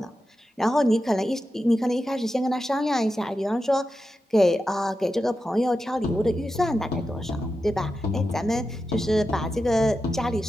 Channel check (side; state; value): both; normal; correlation 0.90